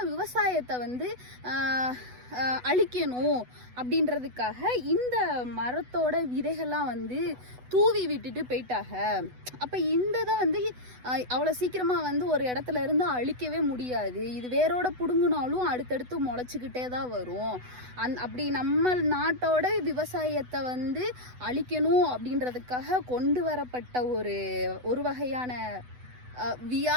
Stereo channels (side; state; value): left; late; 8.0 ms